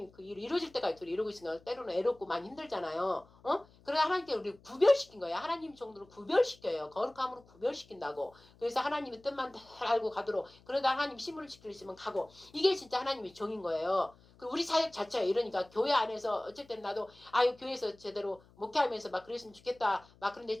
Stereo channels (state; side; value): noise; left; hum, 27 dB below the sound